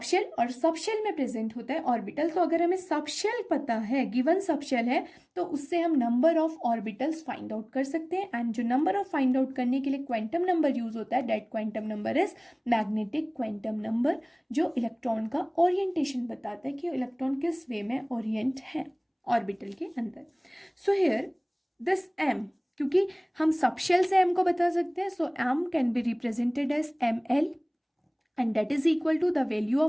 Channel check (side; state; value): both; identical; correlation 1.00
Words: और सबशेल में प्रेजेंट होता है ऑर्बिटल. तो अगर हमें सबशेल पता है, गिवन सबशेल है, तो उससे हम number of orbitals find out कर सकते हैं. एंड जो नंबर ऑफ फाइंड आउट करने के लिए क्वांटम नंबर यूज होता है, that quantum number is magnetic quantum number, जो इलेक्ट्रॉन का ओरिएंटेशन बताता है कि इलेक्ट्रॉन किस वे में ओरिएंट है ऑर्बिटल के अंदर. सो हियर दिस m, क्योंकि हम सबशेल से m को बता सकते हैं, so m can be represented as ml and that is equal to the value